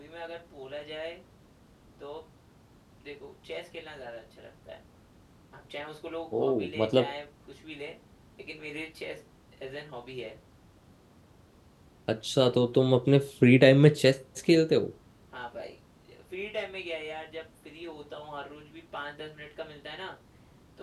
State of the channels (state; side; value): identical; both; correlation 1.00